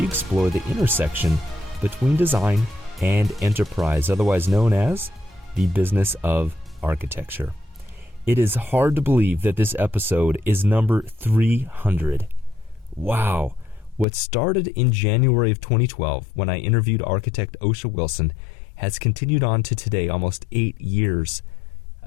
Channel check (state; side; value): drops out; right; at 14.1 s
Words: explore the intersection between design and enterprise, otherwise known as the business of architecture. It is hard to believe that this episode is number 300. Wow. What started in January of 2012 when I interviewed architect Oscia Wilson has continued on to today, almost 8 years